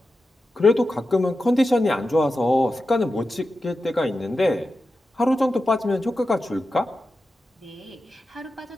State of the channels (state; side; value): normal; both; correlation 0.91